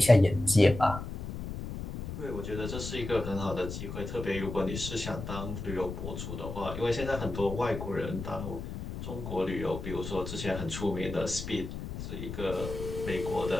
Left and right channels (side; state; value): left; noise; rumble, 7 dB below the sound